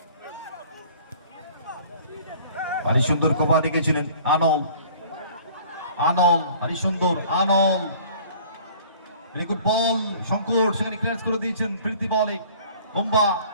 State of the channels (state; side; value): inverted; both; correlation -0.50